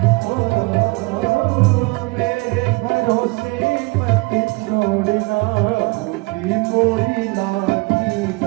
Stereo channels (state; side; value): quieter; left; 26.4 dB